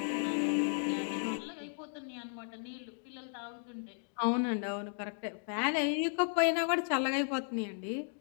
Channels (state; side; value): silent; right; digital silence